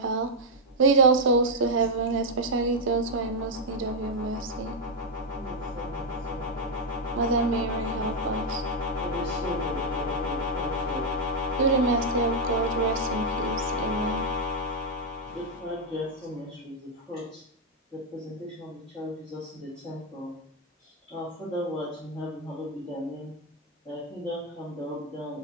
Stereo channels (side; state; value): both; normal; correlation 0.00